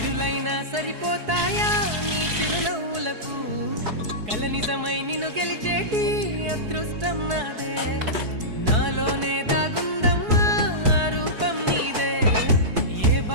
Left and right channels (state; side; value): late; left; 4.7 ms